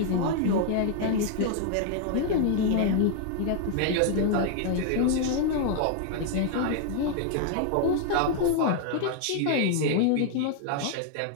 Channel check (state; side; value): different; both; correlation 0.00